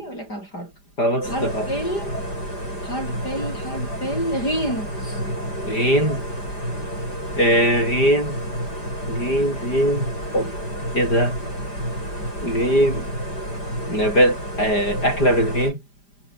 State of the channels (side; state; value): right; late; 5.0 ms